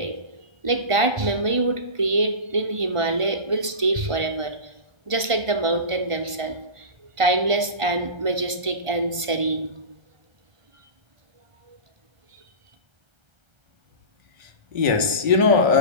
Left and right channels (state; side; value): late; left; 1.5 ms